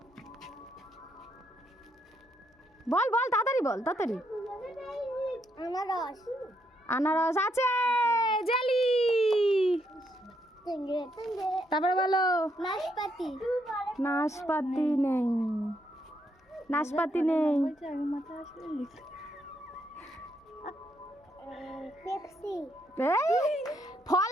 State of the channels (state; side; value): normal; both; correlation 0.76